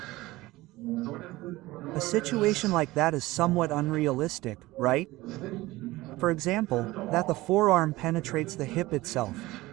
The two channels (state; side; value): quieter; left; 18.9 dB